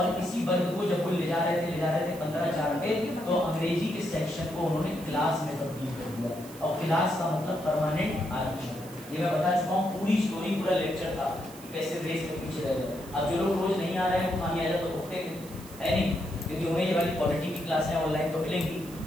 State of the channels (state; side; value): noise; right; hiss, 18 dB below the sound